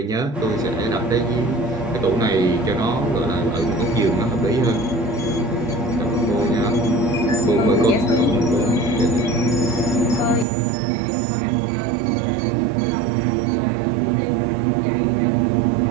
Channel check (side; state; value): left; drops out; at 10.5 s